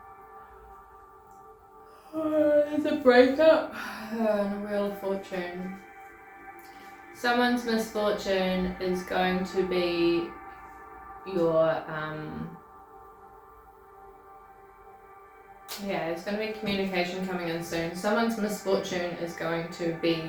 There's a breakup and a Wheel of Fortune. Someone's misfortune is going to be your, yeah, there's going to be communication coming in soon. Someone's misfortune is going to be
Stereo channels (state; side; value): identical; both; correlation 1.00